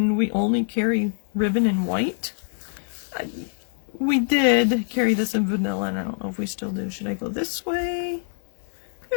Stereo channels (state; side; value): silent; right; 62 dB below the other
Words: we only carry ribbon in white. We did carry this in vanilla, and I don't know if we still do. Should I go this way?